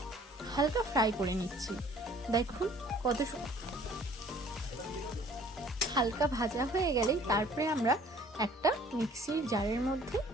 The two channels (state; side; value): normal; both; correlation 0.54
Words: হালকা ফ্রাই করে নিচ্ছি। দেখুন কত হালকা ভাজা হয়ে গেলেই তারপরে আমরা একটা মিক্সির জারের মধ্যে